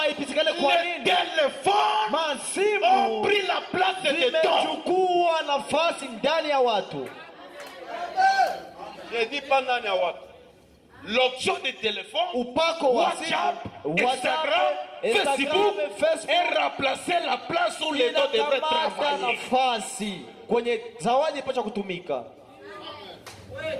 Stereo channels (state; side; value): identical; both; correlation 1.00